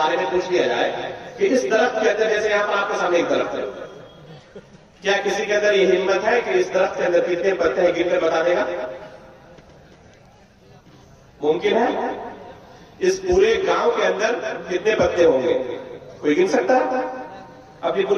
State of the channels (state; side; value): identical; both; correlation 1.00